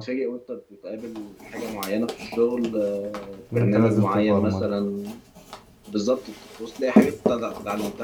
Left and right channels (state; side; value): identical; both; correlation 1.00